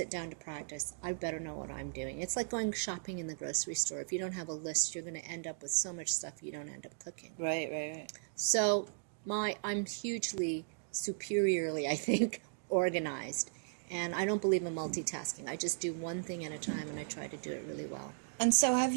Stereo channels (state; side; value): silent; left; digital silence